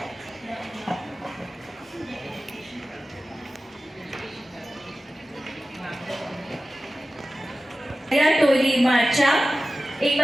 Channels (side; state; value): both; normal; correlation 0.95